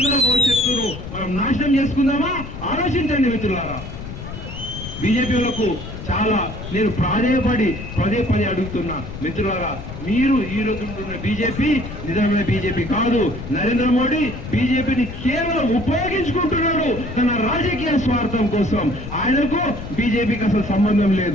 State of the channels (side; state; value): left; noise; rumble, 10 dB below the sound